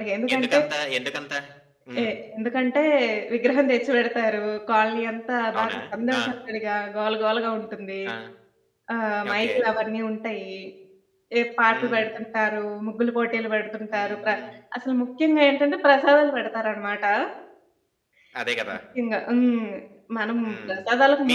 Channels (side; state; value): both; identical; correlation 1.00